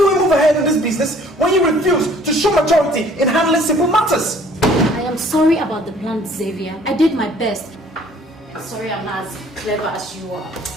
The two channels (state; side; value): normal; both; correlation 0.56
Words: we move ahead in this business when you refuse to show maturity in handling simple matters? I am sorry about the plan, Xavier. I did my best. Sorry I'm not as clever as you are.